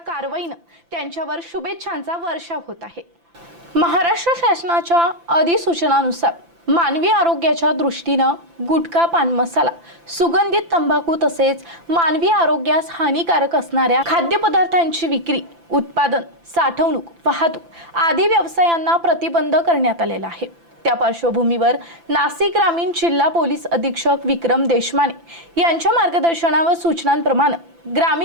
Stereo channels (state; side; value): late; left; 5.9 ms